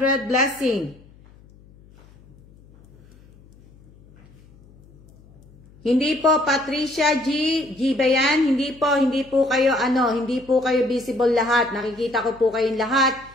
blessing. Hindi po Patricia G. G ba yan? Hindi po kayo hindi po kayo visible lahat. Nakikita ko po kayong lahat.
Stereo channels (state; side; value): noise; left; hum, 26 dB below the sound